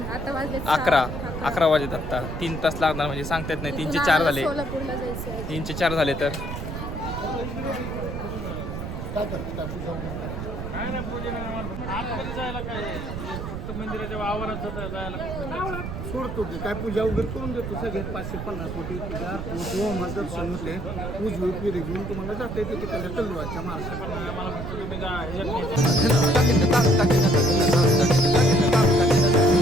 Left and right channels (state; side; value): noise; right; rumble, 6 dB below the sound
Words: आता वाजले 11 वाजत आता 3 तास लागणार म्हणजे सांगता येत नाही 3 चे 4 झाले सोलापूरला जायचं. 3 चे 4 झाले तर सोडतो की काय पूजा वगैरे करून देतो सगळ्यात 550 कोटी पूजा होम दर्शन होते उजवी पिढी घेऊन तुम्हाला जाता येते तिकडल्या तलवारच्या